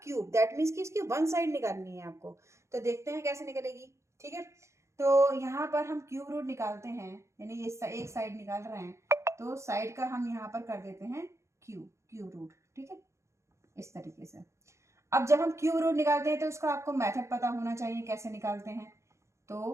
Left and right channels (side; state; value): left; late; 0.14 ms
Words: क्यूब, दैट मीन्स कि इसकी वन साइड निकालनी है आपको, तो देखते हैं कैसे निकलेगी, ठीक है। तो यहाँ पर हम क्यूब रूट निकालते हैं, यानी ये एक साइड निकाल रहे हैं, तो साइड का हम यहाँ पर कर देते हैं क्यूब रूट, ठीक है, इस तरीके से। अब जब हम क्यूब रूट निकालते हैं तो उसका आपको मेथड पता होना चाहिए कैसे निकालते हैं।